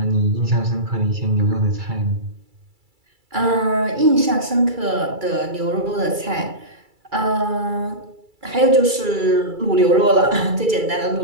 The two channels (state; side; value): late; left; 2.3 ms